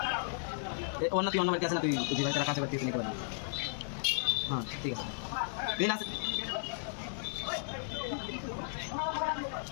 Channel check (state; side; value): silent; right; digital silence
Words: অন্য তুই অন্য বাড়িতে আসে না তুই যে বাড়িতে রাখা আছে বাড়িতে নিতে পারবি হ্যাঁ ঠিক আছে তুই আসে